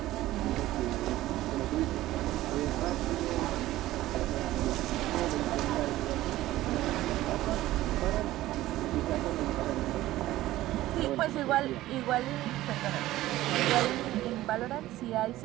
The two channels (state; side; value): quieter; left; 15.7 dB